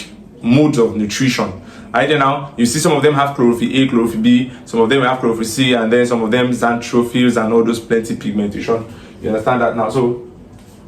modes of nutrition. Right now, you see some of them have chlorophyll A, chlorophyll B, some of them have chlorophyll C, and then some of them xanthophylls and all those plenty pigmentation. You understand that now? So,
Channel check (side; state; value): both; identical; correlation 1.00